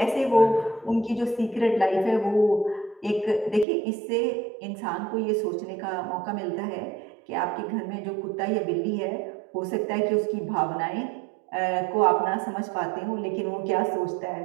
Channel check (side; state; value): left; drops out; at 3.7 s